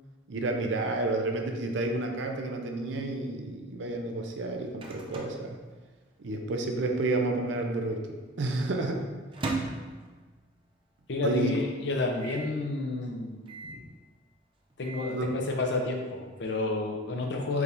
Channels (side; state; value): both; normal; correlation 0.32